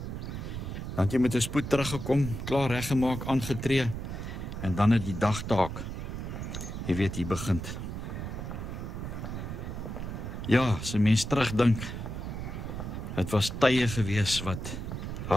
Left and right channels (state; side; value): noise; right; rumble, 6 dB below the sound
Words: Dan het jy met 'n spoed teruggekom, klaar reggemaak, aangetree en dan het die dagtaak, jy weet, hier begin. Ja, as 'n mens terugdink, het was tye gewees wat